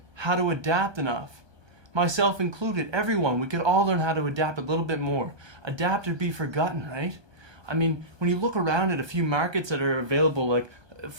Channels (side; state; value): left; late; 1.2 ms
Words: how to adapt enough. Myself included, everyone, we could all learn how to adapt a little bit more. Adapt or be forgotten, right? When you look around at a few markets that are available, like,